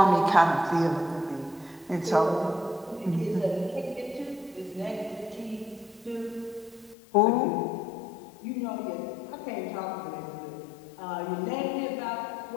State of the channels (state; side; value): drops out; right; at 7.0 s